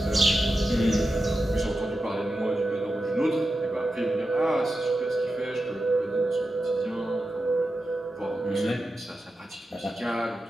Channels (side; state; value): both; normal; correlation 0.90